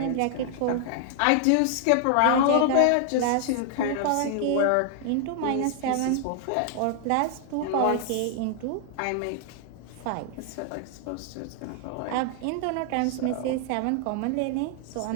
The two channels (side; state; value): both; different; correlation 0.00